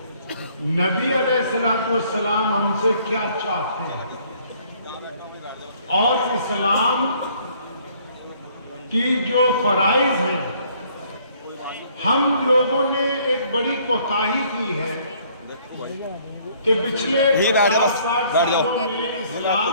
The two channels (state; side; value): inverted; both; correlation -0.62